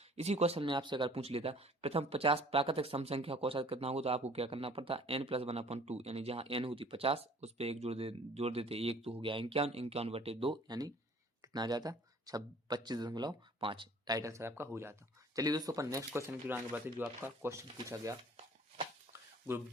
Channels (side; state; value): both; normal; correlation 0.52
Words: इसी क्वेश्चन में आपसे अगर पूछ लेता प्रथम 50 प्राकृतिक सम संख्या का औसत कितना होगा, तो आपको क्या करना पड़ता, n+1/2, यानी जहां n होती 50 उस पर 1 जोड़ देते, 1 तो हो गया 51, 51/2, यानी कितना आ जाता 25.5, राइट आंसर आपका हो जाता। चलिए दोस्तों, अपन नेक्स्ट क्वेश्चन की आगे बढ़ते, जो आपका क्वेश्चन पूछा गया ग्रुप